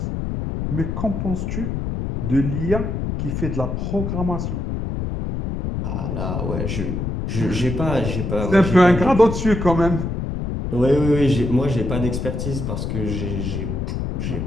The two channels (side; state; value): left; noise; rumble, 3 dB below the sound